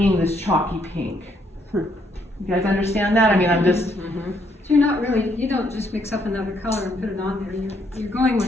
this chalky pink. You guys understand that? I mean, I'm just... So you're not really, you don't just mix up another color and put it on there. You're going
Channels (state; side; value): normal; both; correlation 0.71